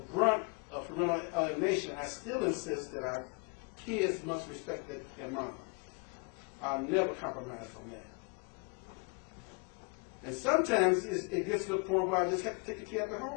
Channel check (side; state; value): right; quieter; 34.1 dB